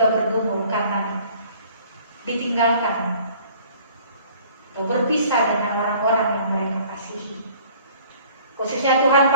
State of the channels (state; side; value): inverted; both; correlation -0.53